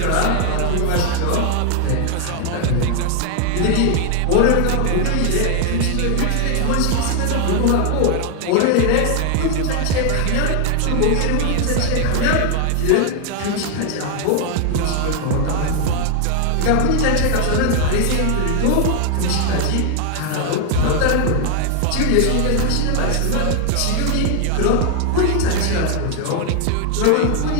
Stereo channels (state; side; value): different; both; correlation 0.00